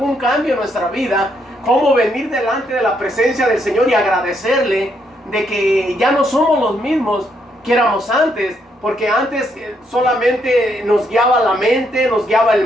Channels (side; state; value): both; normal; correlation 0.75